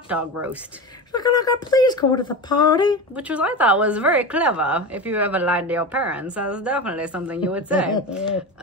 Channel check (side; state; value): both; normal; correlation 0.25